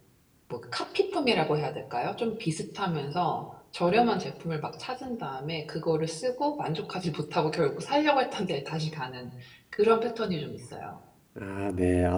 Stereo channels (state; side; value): identical; both; correlation 1.00